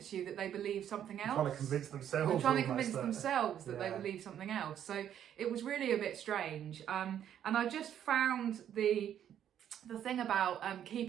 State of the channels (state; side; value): quieter; left; 10.0 dB